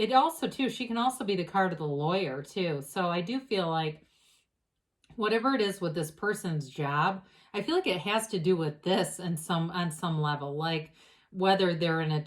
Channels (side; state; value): both; identical; correlation 1.00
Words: also, too, she can also be the card of the lawyer, too. So I do feel like whatever it is with this person's job, I feel like it has to do with this on some level. Like whether they're an